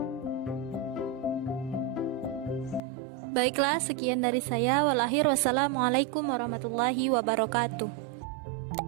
Baiklah, sekian dari saya. Wassalamualaikum warahmatullahi wabarakatuh.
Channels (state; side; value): drops out; left; at 2.8 s